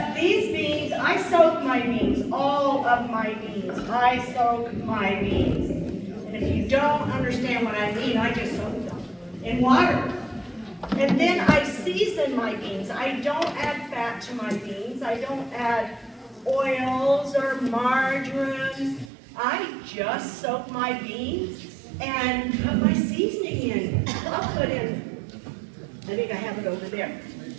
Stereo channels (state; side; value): drops out; left; at 19.1 s